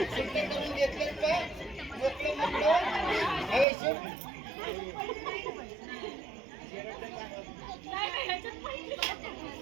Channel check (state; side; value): drops out; left; at 3.7 s